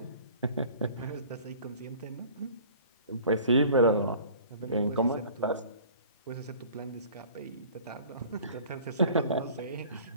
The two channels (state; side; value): inverted; both; correlation -0.47